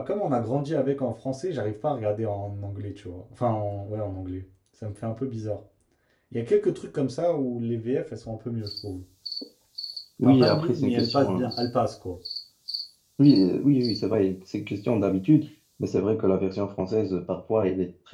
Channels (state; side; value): identical; both; correlation 1.00